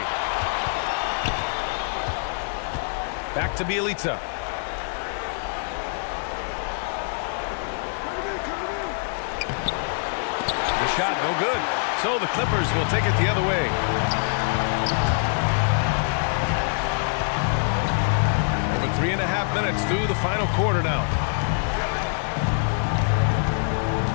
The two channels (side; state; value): right; silent; digital silence